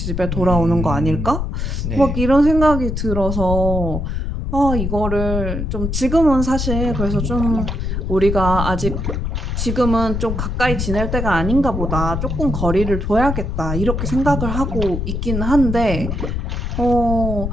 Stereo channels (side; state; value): left; noise; rumble, 2 dB below the sound